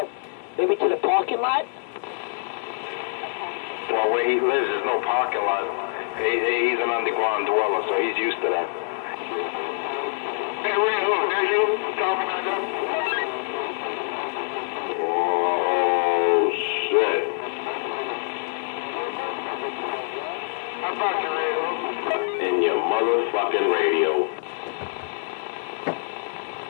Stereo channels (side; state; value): right; silent; 57 dB below the other